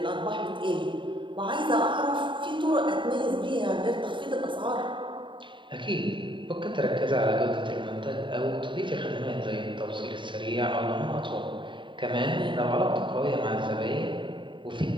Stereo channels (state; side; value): late; left; 0.23 ms